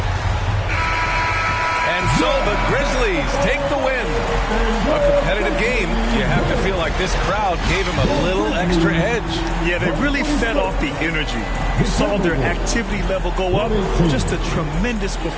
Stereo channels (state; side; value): identical; both; correlation 1.00